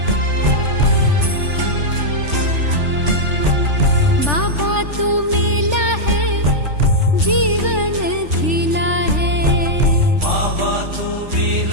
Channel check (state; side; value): late; left; 3.4 ms